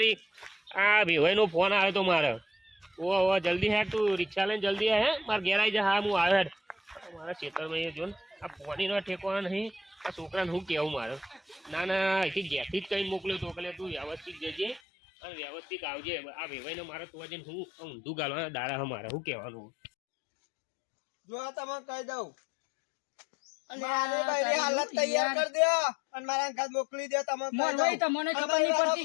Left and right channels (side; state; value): right; drops out; at 14.8 s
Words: આ ભેવાઈનો ફોન આવ્યો તો મારે ઓ જલ્દી હેઠ તું રિક્ષા લઈને જલ્દી હે મારે ઘેર આવી જા હા હું આવ્યો હેઠ મારા ખેતરમાં જો ને આ પાણીનો ઠેકવાનો નહીં આ છોકરાને શું કહેવું મારે ના ના અહીંથી ઘેરથી જ કંઈ મોકલ્યો તો એટલે તું વ્યવસ્થિત જજે અને વ્યવસ્થિત આવજે આ ભેવાઈને મારે તું જઈને હું ઊંધું ગાલવાના દાડા મારે શું કહેવાનું જો આ તમને કહી દઉં મારે બૈરી હાલત તૈયાર કરી દો અને મારા ઘર મોકલી દો તમે કહી મોરવાઈ દઉં. તમને ખબર અમારી નહીં વાળો-